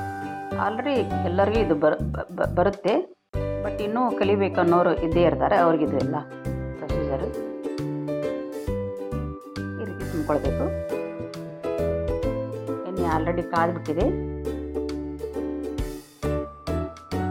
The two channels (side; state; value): both; identical; correlation 1.00